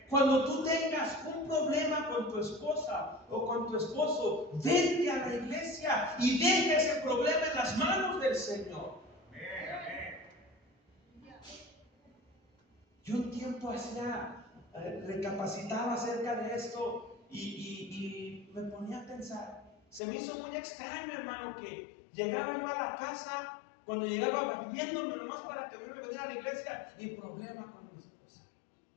Cuando tú tengas un problema con tu esposa o con tu esposo, vente a la iglesia y deja ese problema en las manos del Señor. Amén, amén. Yo un tiempo recapacitaba acerca de esto y me ponía a pensar. Se me hizo muy extraño, hermano, que llegaba yo a la casa, cuando llegaba barriéndome nomás para que me viniera a la iglesia, y problema con mi esposa,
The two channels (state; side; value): drops out; right; at 20.0 s